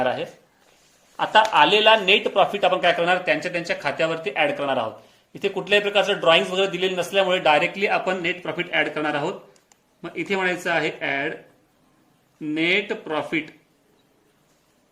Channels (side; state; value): both; identical; correlation 1.00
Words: आहे. आता आलेला नेट प्रॉफिट आपण काय करणार, त्यांच्या खात्यावरती ऍड करणार आहोत. इथे कुठल्याही प्रकारचं ड्रॉइंग वगैरे दिलेले नसल्यामुळे डायरेक्टली आपण नेट प्रॉफिट ऍड करणार आहोत. मग इथे म्हणायचं आहे ऍड नेट प्रॉफिट.